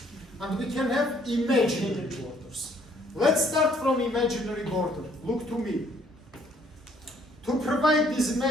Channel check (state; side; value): normal; both; correlation 0.63